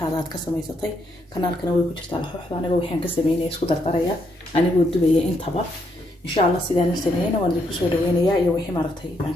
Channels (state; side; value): normal; both; correlation 0.76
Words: aad ka samaysatay kanaalkana way ku jirtaa laxooxda aniga waxaan ka sameeyay isku dardaraya anigu dubaya intaba insha Allah sidaan sameeyay waan idin ku soo dhaweynayaa iyo wixii maartay aan